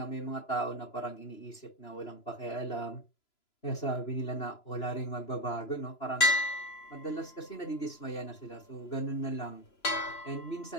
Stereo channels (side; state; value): right; late; 3.0 ms